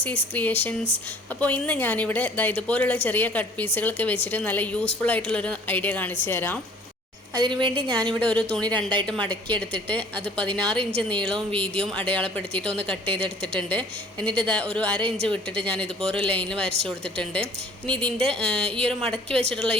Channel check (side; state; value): both; normal; correlation 0.52